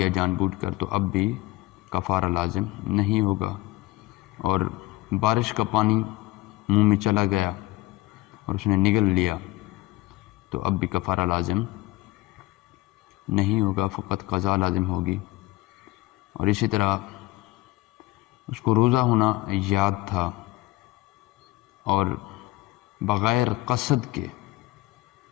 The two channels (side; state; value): right; quieter; 18.8 dB